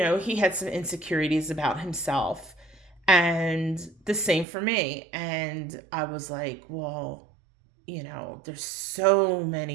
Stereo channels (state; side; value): drops out; left; at 4.5 s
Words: he had some insecurities about himself, and the same for me. And I was like, well, you know, there's so